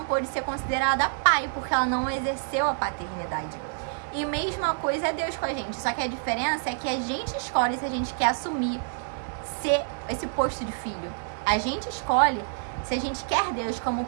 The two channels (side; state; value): left; silent; 60 dB below the other